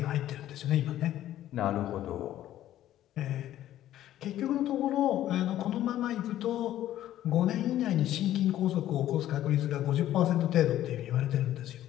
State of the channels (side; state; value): right; quieter; 12.9 dB